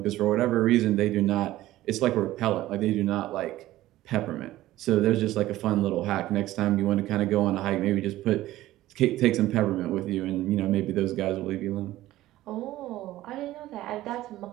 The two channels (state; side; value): quieter; left; 15.5 dB